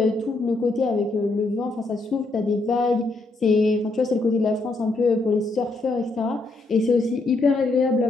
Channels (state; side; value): quieter; right; 3.2 dB